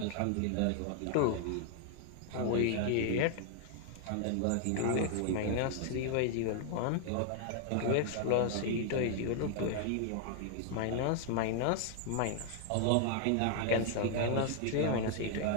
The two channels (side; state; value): both; different; correlation 0.00